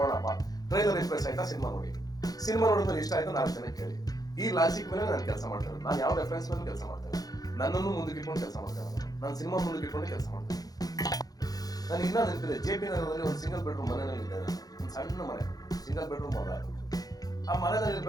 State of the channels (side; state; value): right; late; 0.18 ms